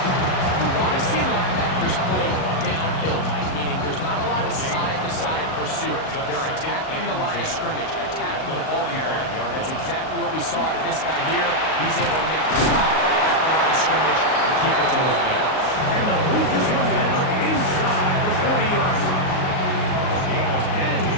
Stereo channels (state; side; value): late; right; 38 ms